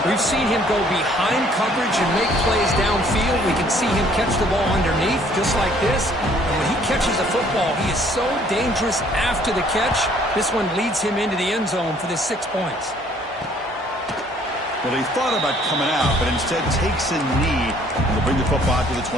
We've seen him go behind coverage and make plays downfield. We can see him catch the ball underneath, just like this. And when he catches the football, he is so dangerous after the catch. This one leads him into the end zone for the 6 points. Well, he thought about coming out, but instead takes a knee and will bring the football to the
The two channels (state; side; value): normal; both; correlation 0.60